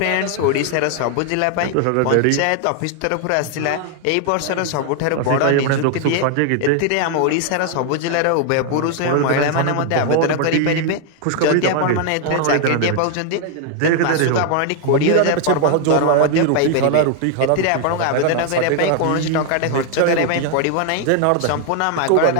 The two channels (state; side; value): different; both; correlation 0.00